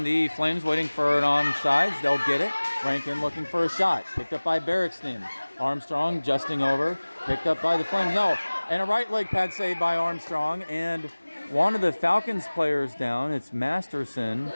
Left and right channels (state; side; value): inverted; both; correlation -1.00